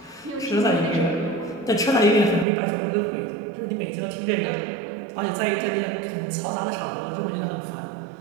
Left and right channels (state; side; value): drops out; left; at 2.5 s